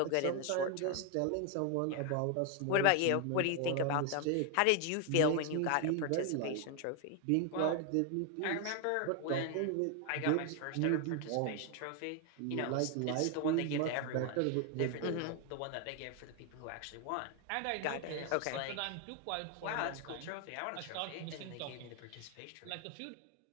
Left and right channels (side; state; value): both; different; correlation 0.01